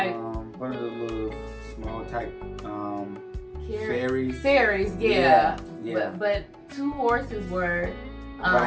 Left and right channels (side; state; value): both; identical; correlation 1.00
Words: One of the little small type ferries. Ferries, yeah. But two horses were.